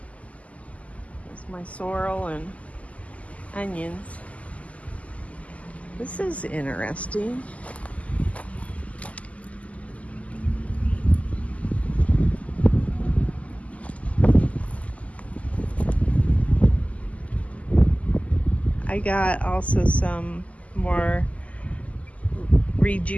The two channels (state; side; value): late; right; 0.069 ms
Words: There's my sorrel and onions. This is interesting. I got also some more